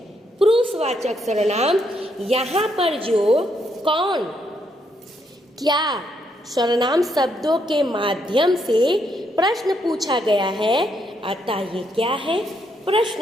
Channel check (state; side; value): normal; both; correlation 0.76